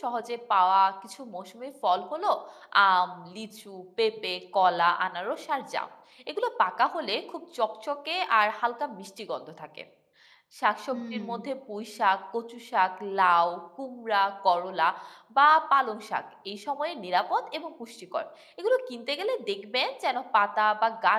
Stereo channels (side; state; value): both; identical; correlation 1.00